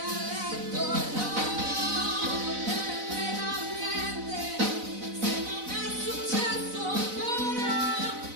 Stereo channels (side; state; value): left; late; 4.0 ms